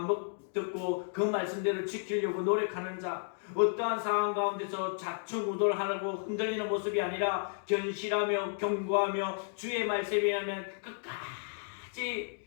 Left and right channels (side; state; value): right; silent; digital silence